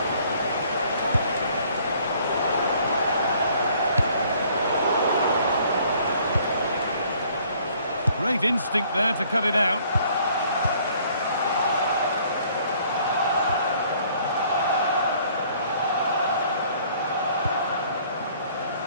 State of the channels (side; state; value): both; inverted; correlation -0.59